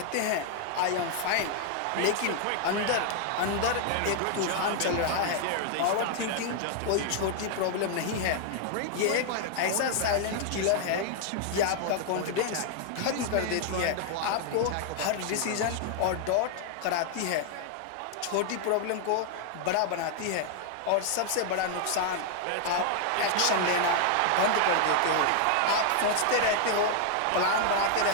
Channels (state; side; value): different; both; correlation 0.00